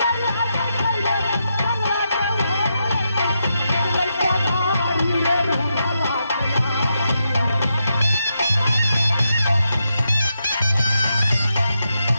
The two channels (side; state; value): both; inverted; correlation -0.84